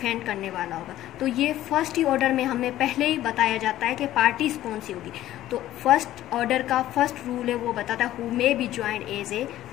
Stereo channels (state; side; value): quieter; right; 13.9 dB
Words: करने वाला होगा। तो ये फर्स्ट ही ऑर्डर में हमें पहले ही बताया जाता है कि पार्टीज कौन सी होगी। तो फर्स्ट ऑर्डर का फर्स्ट रूल है वो बताता है who may be joined as a